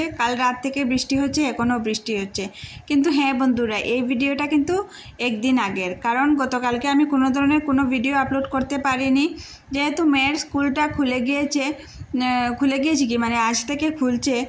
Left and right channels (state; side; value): identical; both; correlation 1.00